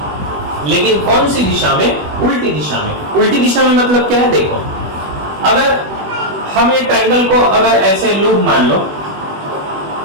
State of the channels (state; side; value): late; left; 21 ms